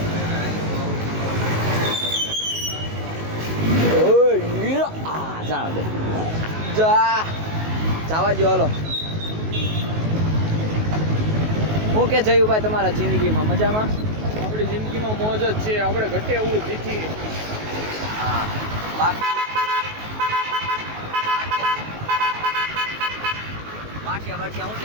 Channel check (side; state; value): left; late; 19 ms